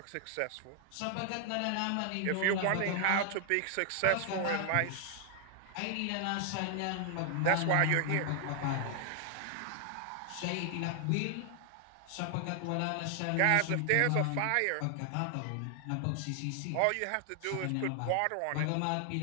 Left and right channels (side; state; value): both; different; correlation 0.00